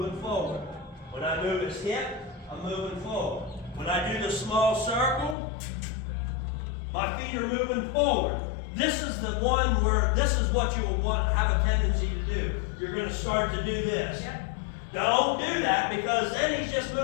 forward. When I move his hip, I'm moving forward. When I do the small circle, my feet are moving forward. This is the one where this is what you will have a tendency to do. You're going to start to do this. Yep. Don't do that, because then he's just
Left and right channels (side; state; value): right; drops out; at 5.4 s